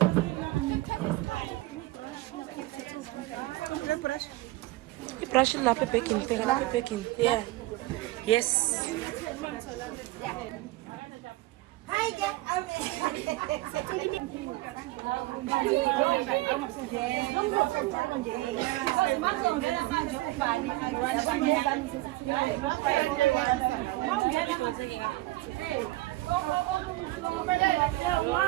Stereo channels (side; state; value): left; quieter; 19.0 dB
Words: Brush it lapha baking. Yeah. Yes. Hi